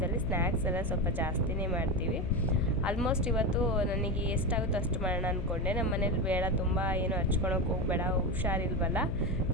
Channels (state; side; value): noise; left; hum, 3 dB below the sound